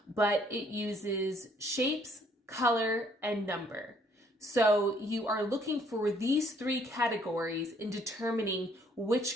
but it uses shapes, color, and number. So you are looking for these three categories in determining which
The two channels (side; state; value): both; normal; correlation 0.64